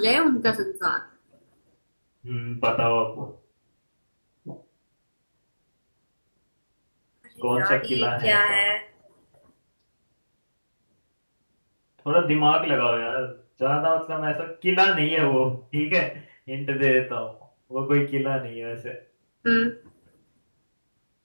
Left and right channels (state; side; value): inverted; both; correlation -1.00